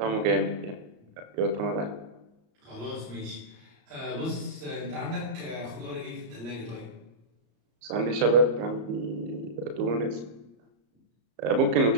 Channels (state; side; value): late; left; 34 ms